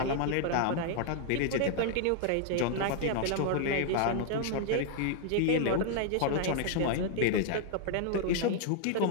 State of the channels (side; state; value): both; different; correlation 0.00